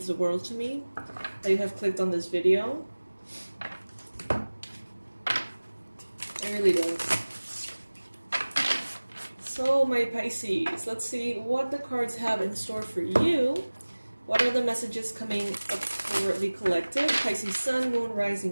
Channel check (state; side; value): inverted; both; correlation -1.00